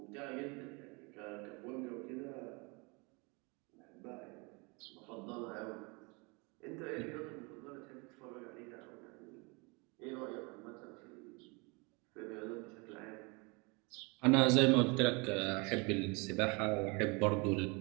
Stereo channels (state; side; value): quieter; left; 29.2 dB